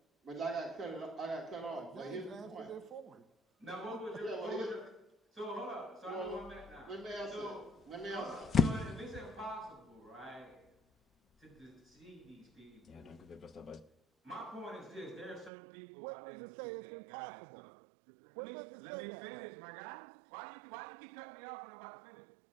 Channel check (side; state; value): left; drops out; at 15.5 s